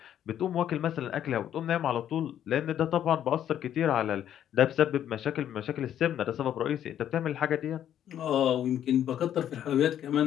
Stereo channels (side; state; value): right; quieter; 10.4 dB